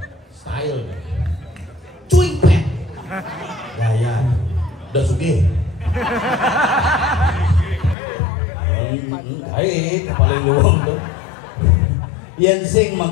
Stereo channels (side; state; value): right; drops out; at 8.0 s